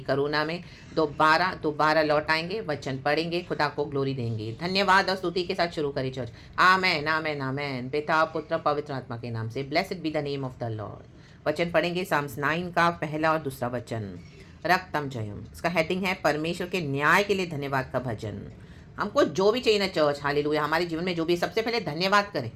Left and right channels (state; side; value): identical; both; correlation 1.00